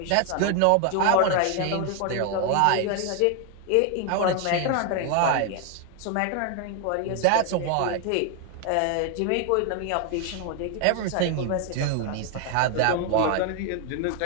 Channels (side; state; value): both; different; correlation 0.01